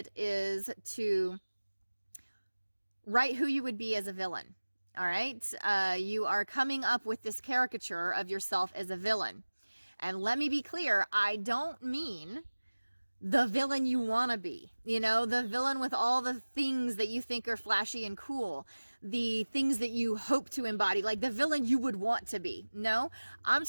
is to write who you would be as a villain. All right. You are coming up with this caricature of yourself as a villain. And let me be clear, I don't mean the villain you want to be. You know, the villain with all the things that you think are flashy and cool, the things that you hope to embody, like the villain you would want to be. No, I'm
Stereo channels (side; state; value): both; inverted; correlation -1.00